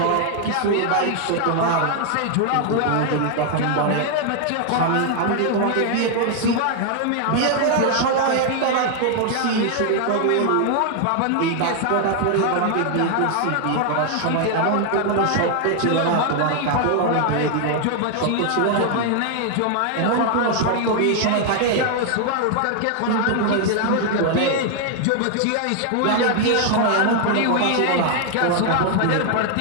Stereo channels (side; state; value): both; different; correlation 0.00